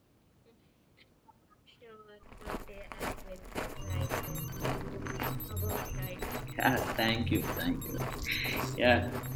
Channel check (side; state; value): both; identical; correlation 1.00